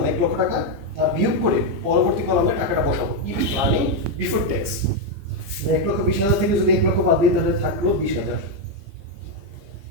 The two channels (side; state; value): left; late; 15 ms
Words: 1 লক্ষ টাকা, তা বিয়োগ করে পরবর্তী কলামে টাকাটা বসাবো। ইবিটি আর্নিং বিফোর ট্যাক্স, 1,20,000 থেকে যদি 1 লক্ষ বাদ দিই তাহলে থাকলো 20,000।